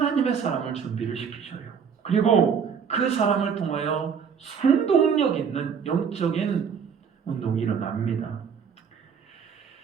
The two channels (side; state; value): left; quieter; 6.8 dB